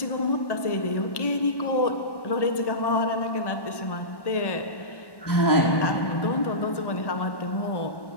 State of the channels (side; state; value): right; late; 1.1 ms